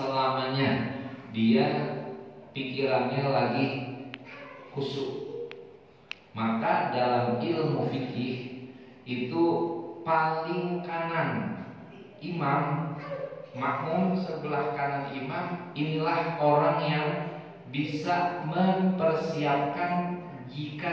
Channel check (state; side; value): identical; both; correlation 1.00